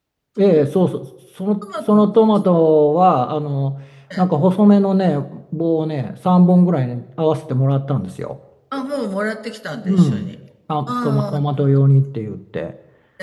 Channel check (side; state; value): both; identical; correlation 1.00